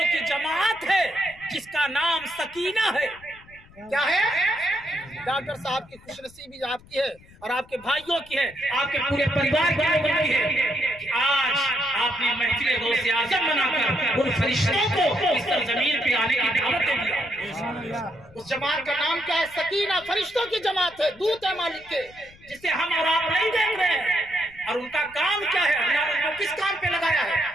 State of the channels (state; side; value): noise; left; rumble, 25 dB below the sound